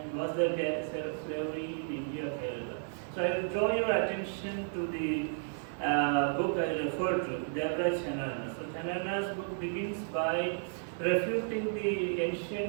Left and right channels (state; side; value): silent; left; digital silence